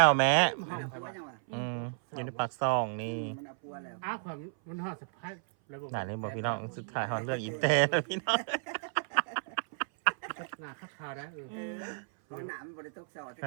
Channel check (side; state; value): left; silent; 56 dB below the other